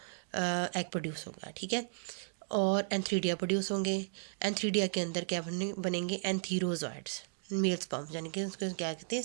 एग प्रोड्यूस होगा, ठीक है। और एंथ्रीडिया प्रोड्यूस होंगे। एंथ्रीडिया के अंदर क्या बनेंगे एंथीरोजॉइड्स, मेल स्पर्म्स, यानी कि उसको क्या कहते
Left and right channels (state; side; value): silent; left; digital silence